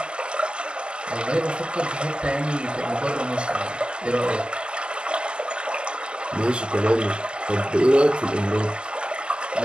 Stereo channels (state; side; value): late; left; 0.053 ms